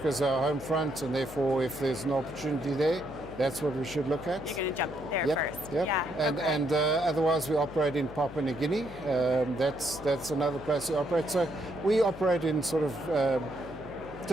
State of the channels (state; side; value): noise; left; hum, 17 dB below the sound